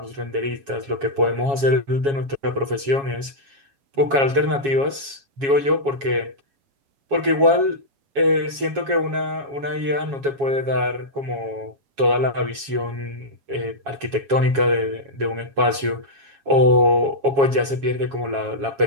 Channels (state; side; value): late; left; 7.3 ms